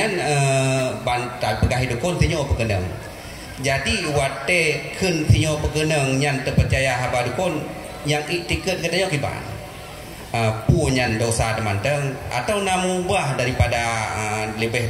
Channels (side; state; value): both; identical; correlation 1.00